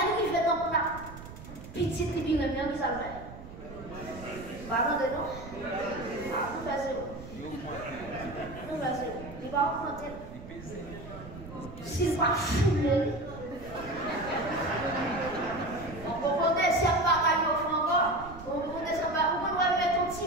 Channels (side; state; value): right; noise; rumble, 14 dB below the sound